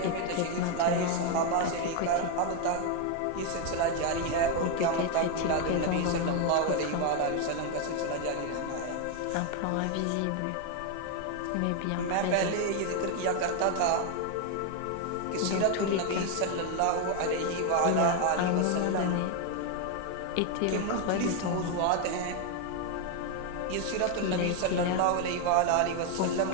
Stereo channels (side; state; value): both; different; correlation 0.01